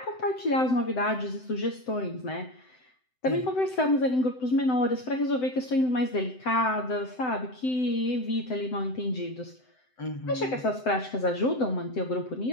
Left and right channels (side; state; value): right; late; 7.8 ms